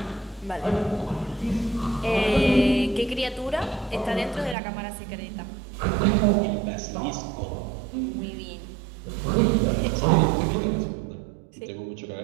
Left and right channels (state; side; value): drops out; left; at 4.5 s